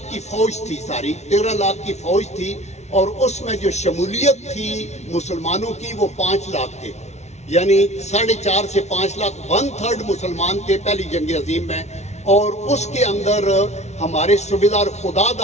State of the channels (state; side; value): late; right; 0.32 ms